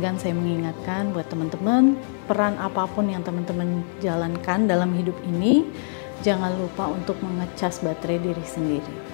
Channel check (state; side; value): silent; right; 62 dB below the other